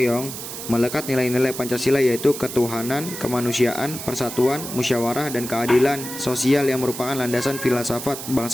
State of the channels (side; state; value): right; noise; hiss, 9 dB below the sound